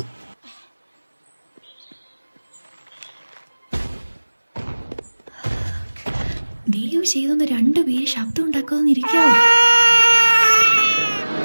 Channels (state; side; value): inverted; both; correlation -1.00